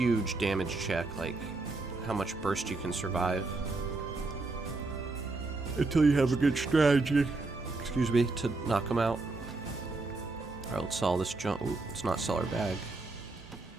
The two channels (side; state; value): left; quieter; 3.3 dB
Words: damage check, like how much burst you can survive. Until you have a good strategy, excuse me, to knock them out. Alright, let's sell this junk. Ooh, let's not sell our bag.